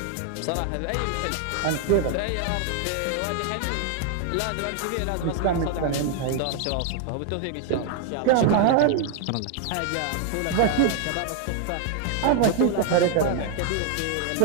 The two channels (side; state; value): both; different; correlation 0.00